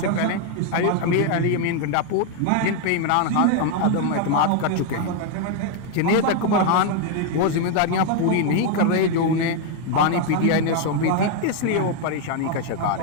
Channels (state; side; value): different; both; correlation 0.01